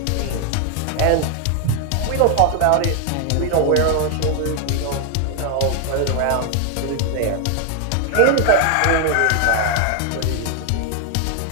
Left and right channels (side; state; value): both; different; correlation 0.00